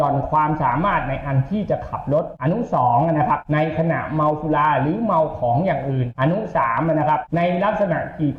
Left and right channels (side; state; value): both; identical; correlation 1.00